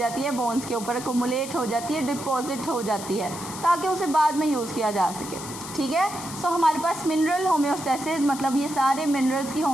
है? बोन्स के ऊपर अकोमुलेट हो जाती है, डिपॉजिट हो जाती है, ताकि उसे बाद में यूज़ किया जा सके. ठीक है, सो हमारे पास मिनरल होम्योस्टेसिस, मतलब ये सारे मिनरल्स की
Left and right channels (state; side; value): noise; left; hiss, 11 dB below the sound